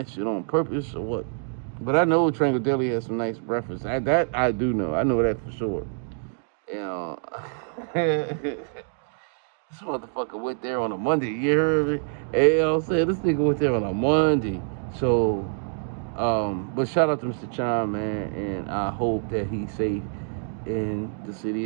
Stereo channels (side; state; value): left; silent; digital silence